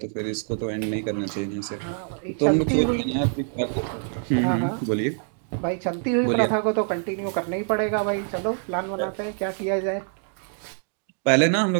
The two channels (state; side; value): silent; left; 62 dB below the other